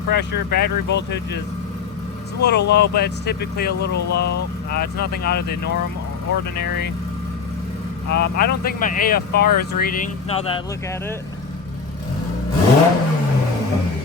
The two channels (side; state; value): right; quieter; 5.6 dB